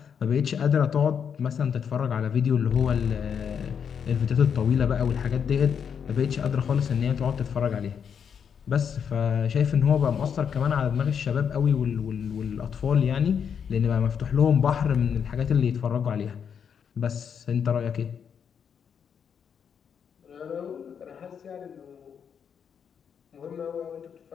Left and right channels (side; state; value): right; quieter; 7.4 dB